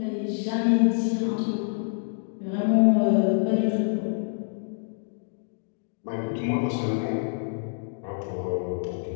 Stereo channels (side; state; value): right; silent; digital silence